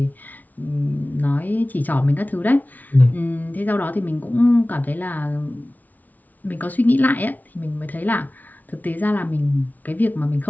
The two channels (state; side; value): late; right; 0.078 ms